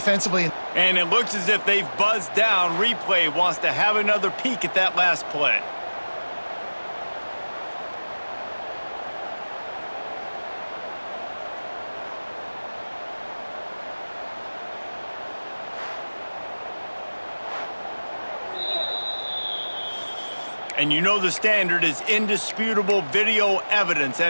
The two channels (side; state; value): both; inverted; correlation -1.00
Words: and it looks as if they've buzzed down. Replay wants to have another peek at that last play. And you know the standard is indisputable video evidence,